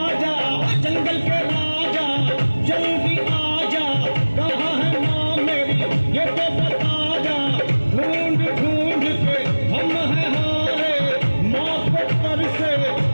जा। जंगल के राजा जल्दी आजा, कहाँ है माँ मेरी ये तो बता जा। ढूंढ ढूंढ के हम हैं हारे, माँ को कर से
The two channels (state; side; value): inverted; both; correlation -1.00